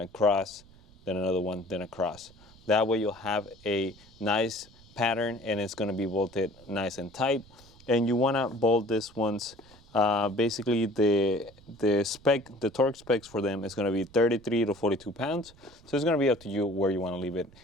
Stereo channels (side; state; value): right; noise; rumble, 25 dB below the sound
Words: across, then another one, then across. That way you'll have a nice pattern, and it's going to be bolted nice and tight. And you want to bolt this once. Basically the torque specs for them is going to be 33 to 42 pounds. So it's going to be up to you where you want to leave it